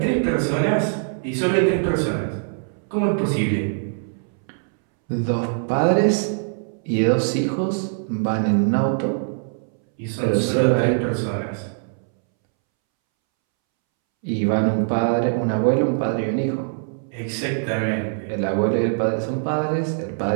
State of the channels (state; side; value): silent; left; 64 dB below the other